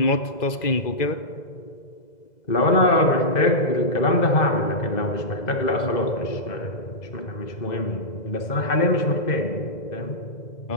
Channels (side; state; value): right; late; 2.0 ms